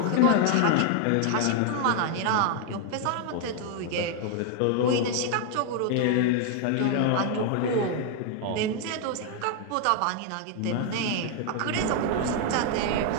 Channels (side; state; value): both; different; correlation 0.00